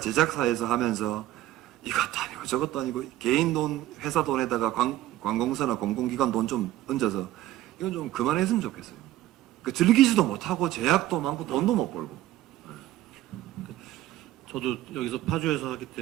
하면서 이것도 아니고 저것도 아니고 개인 돈, 회사 돈에다가 관공서나 공공기관 돈 좀 얹어서 이건 좀 그만했으면 좋겠어요. 그 즐기지도 못하고 제약도 많고 돈도 못 벌고. 저도 여기서 파주에서 하기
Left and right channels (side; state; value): left; quieter; 14.6 dB